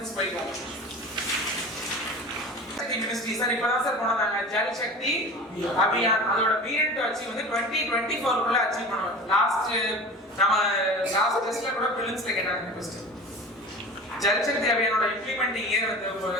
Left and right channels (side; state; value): both; normal; correlation 0.35